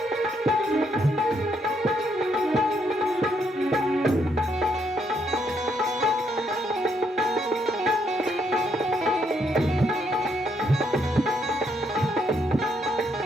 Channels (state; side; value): normal; both; correlation 0.74